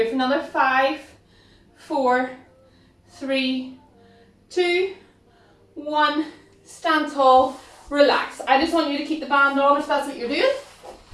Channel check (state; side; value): identical; both; correlation 1.00